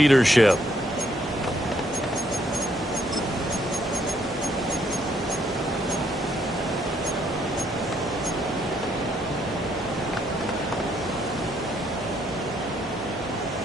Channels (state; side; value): normal; both; correlation 0.70